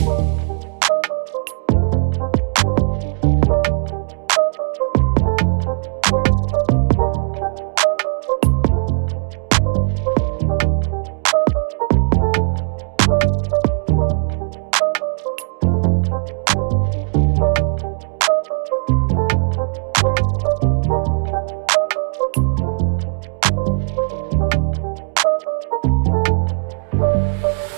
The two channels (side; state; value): left; silent; digital silence